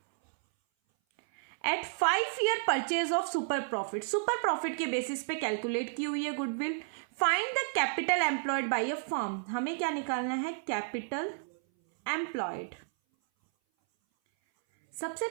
At 5 year purchase of super profit, super profit के basis पे कैलकुलेट की हुई है goodwill. Find the capital employed by a firm, हमें क्या निकालना है, कैपिटल एम्प्लॉयड। सबसे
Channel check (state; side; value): silent; left; 57 dB below the other